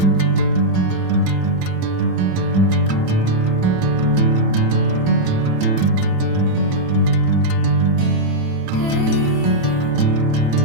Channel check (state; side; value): late; left; 36 ms